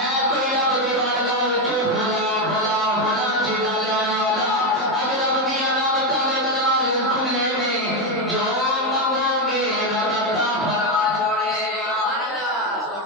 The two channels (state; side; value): normal; both; correlation 0.09